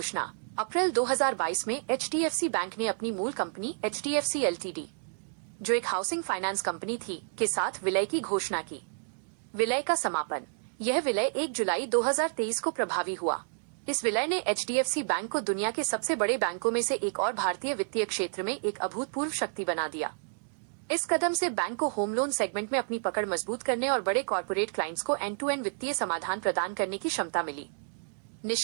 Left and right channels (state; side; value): silent; left; digital silence